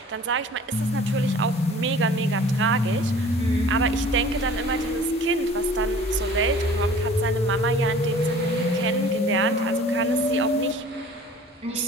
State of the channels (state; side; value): normal; both; correlation 0.47